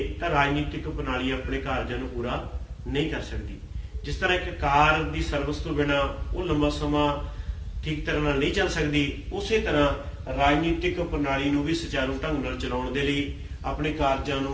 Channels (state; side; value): identical; both; correlation 1.00